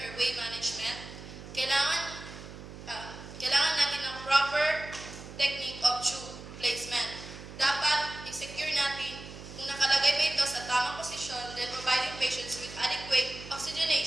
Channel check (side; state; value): right; noise; hum, 13 dB below the sound